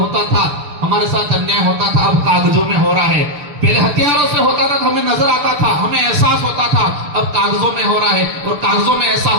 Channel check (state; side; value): late; left; 6.7 ms